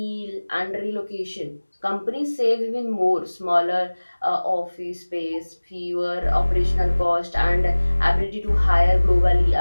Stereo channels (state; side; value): inverted; both; correlation -1.00